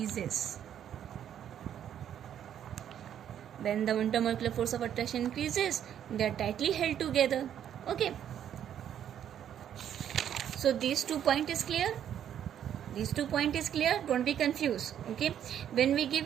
When the intermolecular force of attraction increases, they are tightly held together. Okay. So these 2 points is clear. Don't be confused. Okay. When we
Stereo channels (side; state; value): left; quieter; 9.8 dB